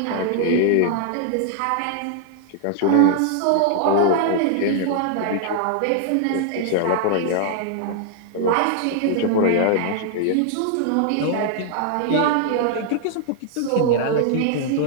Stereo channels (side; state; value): both; different; correlation -0.01